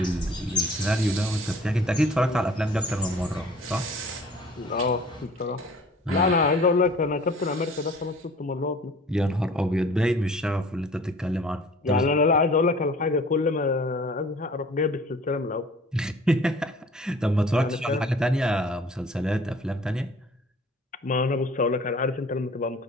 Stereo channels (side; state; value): both; normal; correlation 0.49